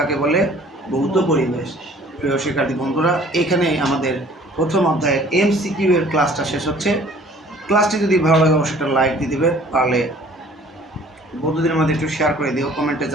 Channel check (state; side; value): normal; both; correlation 0.53